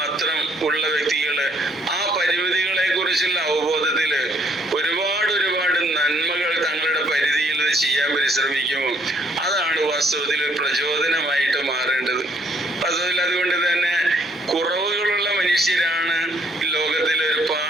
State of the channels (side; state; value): both; normal; correlation 0.66